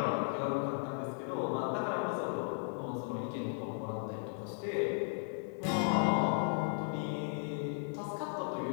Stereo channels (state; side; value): silent; right; digital silence